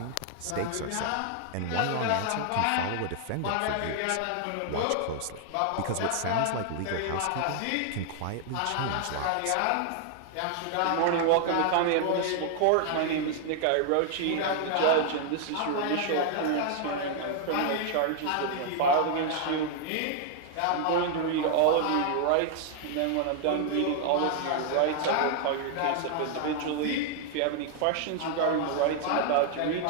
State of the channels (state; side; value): different; both; correlation 0.00